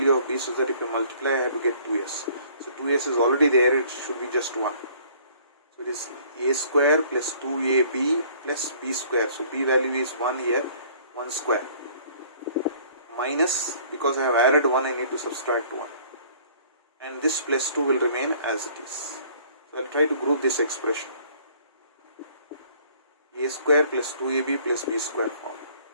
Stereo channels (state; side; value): inverted; both; correlation -0.55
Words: of b, so that if you multiply I have to get 2s. So 2s is already there, it should be just 1. So it is a square plus 2ab plus b square. So b value is 1 here, 1 square. Minus, because I have added 1 I need to subtract 1. And this plus 2 will remain as it is. So I will try to group this expression. A square plus 2ab plus b square form.